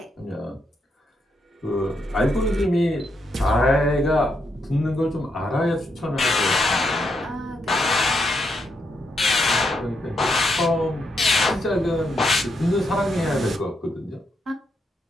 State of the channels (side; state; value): both; normal; correlation 0.80